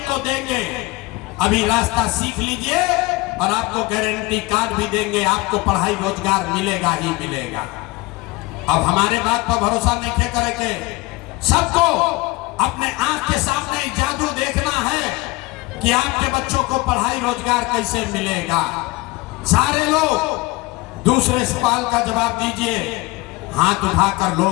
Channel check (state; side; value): quieter; right; 22.5 dB